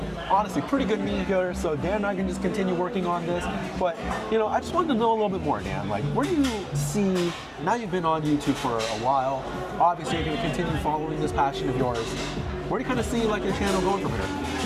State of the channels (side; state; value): both; identical; correlation 1.00